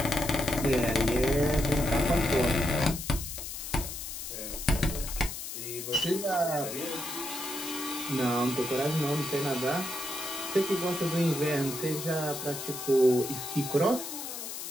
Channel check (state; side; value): noise; left; hiss, 7 dB below the sound